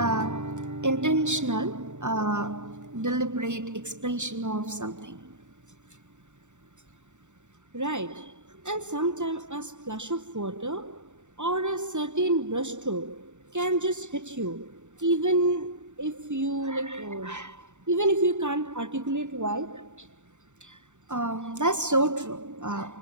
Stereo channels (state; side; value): late; left; 0.84 ms